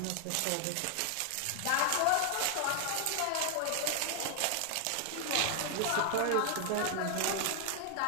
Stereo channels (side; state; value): both; different; correlation 0.00